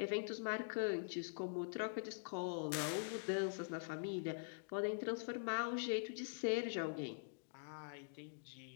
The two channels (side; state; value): right; silent; digital silence